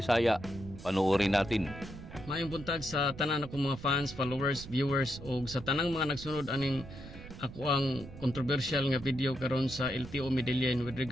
Panoorin natin. Maayong buntag sa tanan akong mga fans, followers, viewers o sa tanang mga nagsunod aning ako ang controversial nga video karon sa LTO Medellin with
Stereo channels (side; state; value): right; noise; rumble, 14 dB below the sound